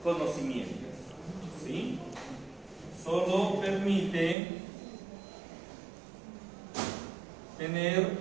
conocimientos, ¿sí? Solo permite tener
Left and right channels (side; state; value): left; drops out; at 4.4 s